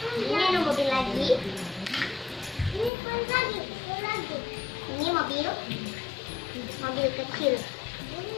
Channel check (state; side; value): drops out; right; at 2.9 s